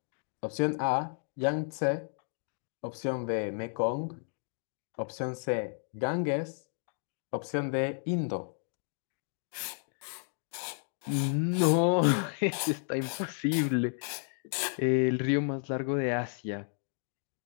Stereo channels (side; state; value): right; silent; 56 dB below the other